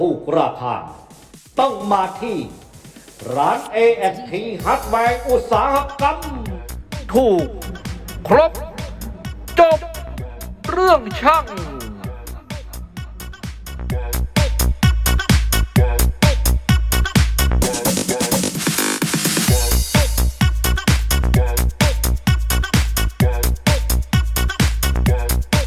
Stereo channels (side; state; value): both; identical; correlation 1.00